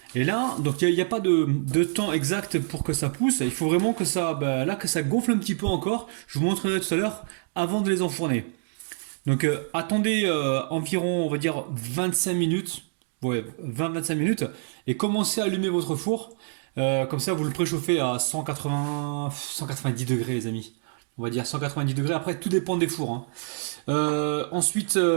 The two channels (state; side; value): silent; left; 61 dB below the other